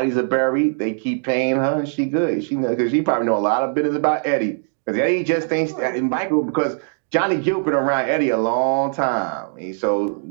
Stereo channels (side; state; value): left; silent; digital silence